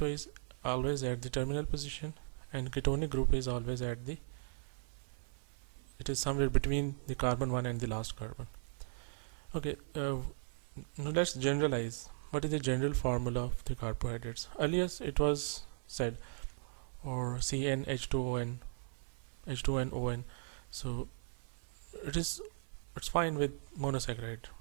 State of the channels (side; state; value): left; silent; 53 dB below the other